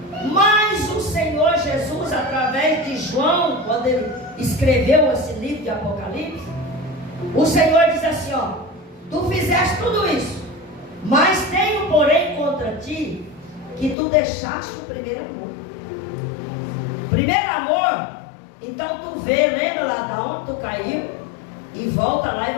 Mas o Senhor Jesus, através de João, quando ele escreveu esse livro de Apocalipse, o Senhor diz assim, ó: tu fizeste tudo isso, mas tenho, porém, contra ti que tu deixaste o primeiro amor. Primeiro amor, então tu vê, lembra lá de onde tu caiu, e volta lá e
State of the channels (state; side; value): drops out; right; at 14.0 s